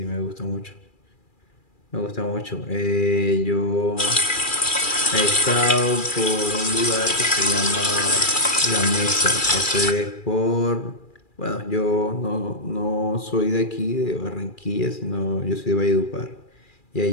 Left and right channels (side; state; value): right; late; 2.4 ms